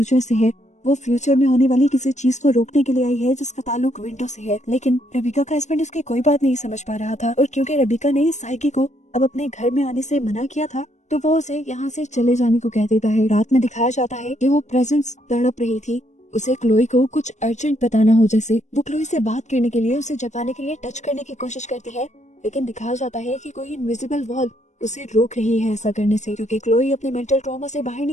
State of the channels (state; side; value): late; right; 0.34 ms